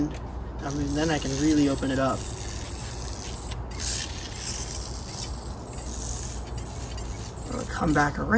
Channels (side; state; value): both; identical; correlation 1.00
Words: I mean, then I can really open it up. I'm gonna come back